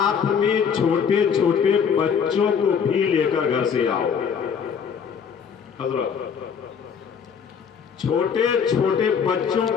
میں چھوٹے چھوٹے بچوں کو بھی لے کر گھر سے آؤ۔ حضرت چھوٹے چھوٹے بچوں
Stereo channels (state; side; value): quieter; right; 6.9 dB